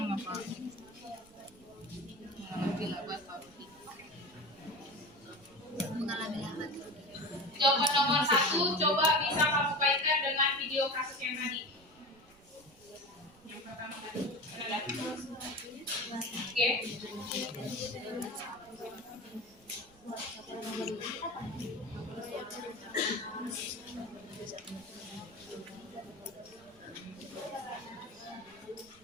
Jawaban nomor 1 coba bisa kamu kaitkan dengan video kasus yang tadi. Yang pertama tadi. Oke.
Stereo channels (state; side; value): noise; right; rumble, 26 dB below the sound